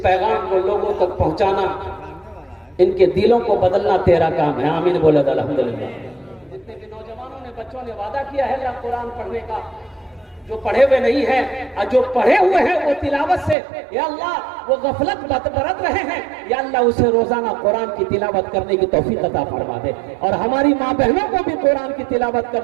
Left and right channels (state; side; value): drops out; left; at 13.6 s